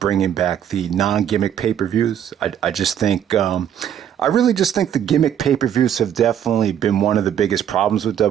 back the non-gimmick pay-per-views. I really just think the gimmick pay-per-views have definitely been one of the biggest problems with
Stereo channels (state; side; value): quieter; left; 9.6 dB